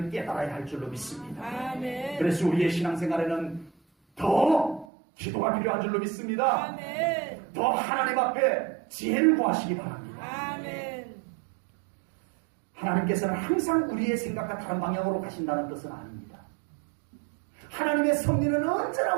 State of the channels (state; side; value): drops out; left; at 4.9 s